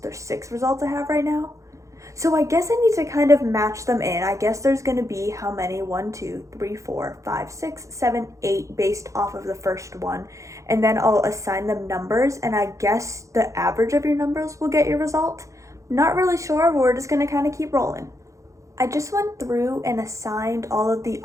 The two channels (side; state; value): left; late; 0.15 ms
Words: 6 results I have right now. So I guess I need to kind of match them in. I guess there's going to be how many? 1, 2, 3, 4, 5, 6, 7, 8 based off of the first one. And then I'll assign them numbers, and I guess the average of your numbers will get your result. Not really sure, but we're just going to kind of keep rolling. I just went through and assigned all of the